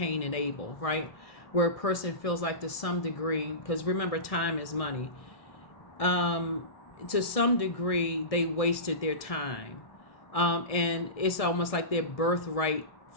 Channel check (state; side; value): late; right; 1.6 ms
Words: and Abel, right? Where a person feels like to some degree, because remember, time is money. To some degree, they wasted their time. And it's almost like their birthright